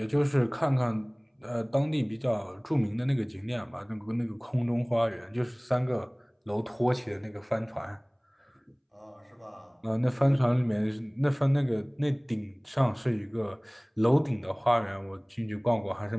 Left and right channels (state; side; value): identical; both; correlation 1.00